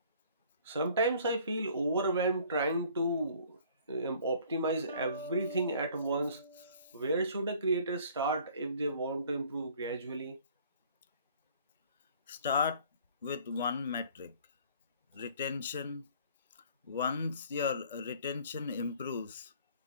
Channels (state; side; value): inverted; both; correlation -0.54